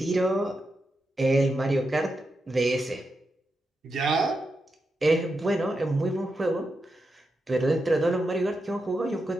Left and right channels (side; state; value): both; normal; correlation 0.87